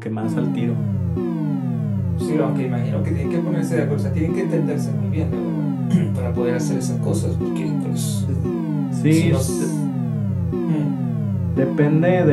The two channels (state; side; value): identical; both; correlation 1.00